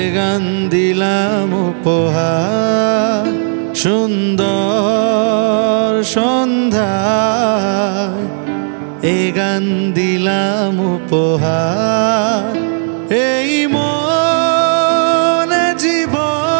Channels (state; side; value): silent; left; digital silence